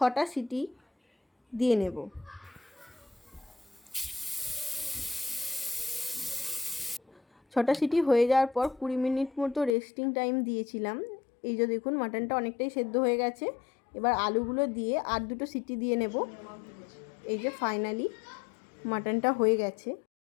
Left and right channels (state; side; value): drops out; right; at 9.8 s